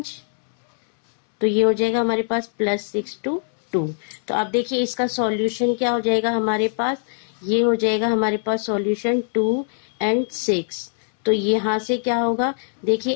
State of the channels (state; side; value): silent; right; 64 dB below the other